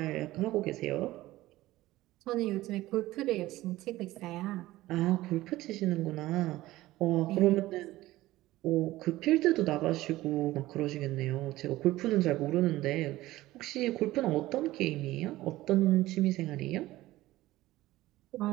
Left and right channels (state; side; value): quieter; left; 17.0 dB